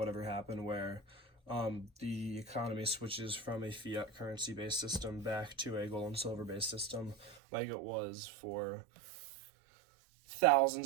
ever happen, where the economy switches from a fiat currency based system back to a gold and silver based system, like it was for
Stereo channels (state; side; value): drops out; left; at 7.4 s